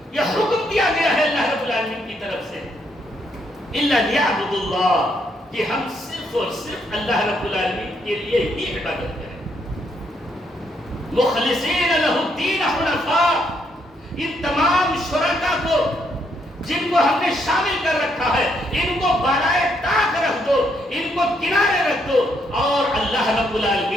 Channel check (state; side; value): normal; both; correlation 0.74